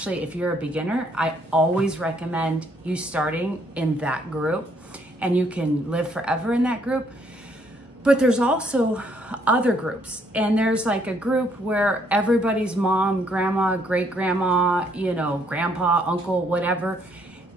if you're a beginner, I always recommend you starting in that group, and you can live forever in that group. But there's also other groups, and there's like a group where everybody's mom, grandma, great grandma, grandpa, uncle, whatever,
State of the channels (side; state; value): both; normal; correlation 0.69